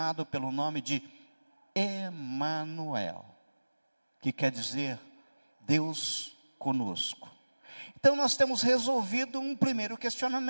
pelo nome de Emanuel, que quer dizer Deus conosco. Então nós temos resolvido um primeiro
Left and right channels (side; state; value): both; inverted; correlation -1.00